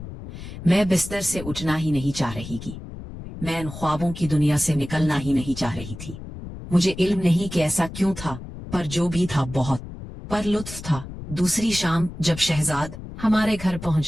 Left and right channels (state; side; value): noise; left; rumble, 12 dB below the sound